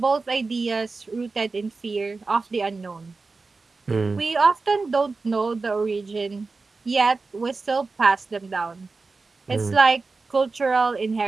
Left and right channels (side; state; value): left; quieter; 4.0 dB